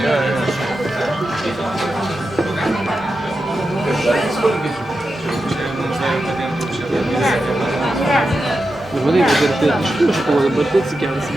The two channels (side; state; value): both; normal; correlation 0.89